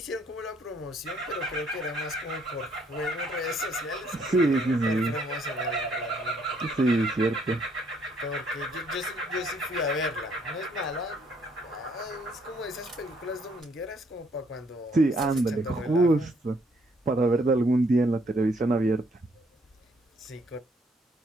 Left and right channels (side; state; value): both; normal; correlation 0.67